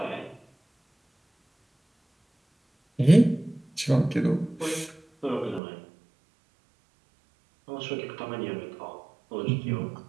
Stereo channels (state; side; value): drops out; left; at 5.6 s